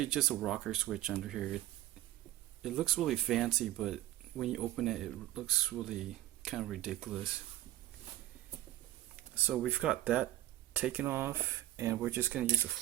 just a rocker switch under here. It looks really fancy, but when you open it, it looks really kind of ridiculous. So we've got that taken off, and we're just going to use a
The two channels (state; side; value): quieter; left; 14.5 dB